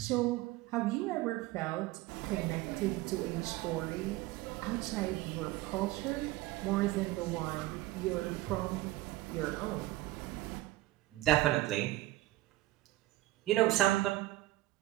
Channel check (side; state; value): left; quieter; 17.6 dB